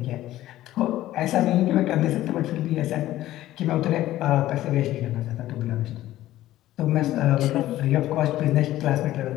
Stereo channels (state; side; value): quieter; right; 14.6 dB